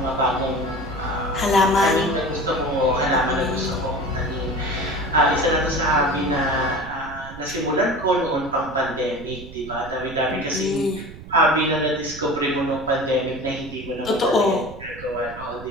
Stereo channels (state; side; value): noise; right; rumble, 15 dB below the sound